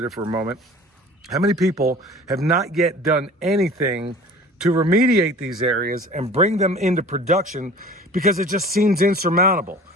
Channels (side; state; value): both; normal; correlation 0.43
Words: for a moment, how many people have not yet done anything to remediate these areas and bring them into production because it just seems insurmountable.